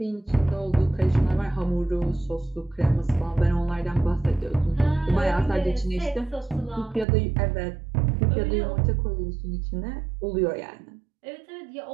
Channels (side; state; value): left; drops out; at 7.1 s